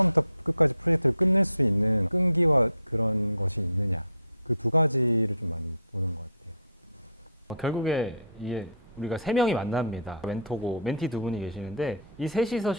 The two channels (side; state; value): both; inverted; correlation -0.53